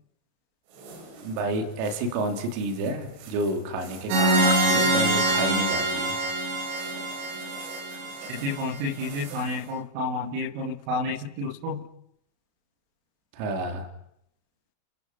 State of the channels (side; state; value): left; late; 36 ms